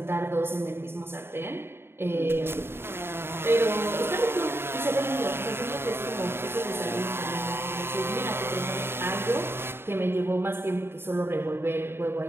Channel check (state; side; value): late; left; 0.11 ms